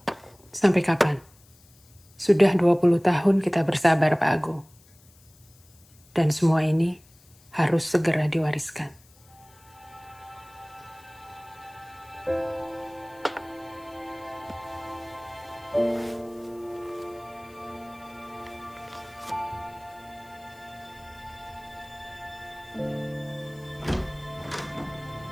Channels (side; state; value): left; noise; hiss, 27 dB below the sound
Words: Sampai kapan? Sudah 20 tahun kita bersabar, Pak Agung. Dan semua ini harus segera diwariskan.